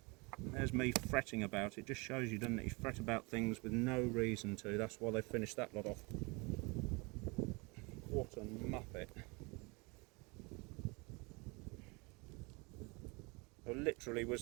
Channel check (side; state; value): left; quieter; 28.0 dB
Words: There's me fretting about it. Just shows you, doesn't it? You fret about things with no reason to. That's why they finished that lot off. What a muppet. There literally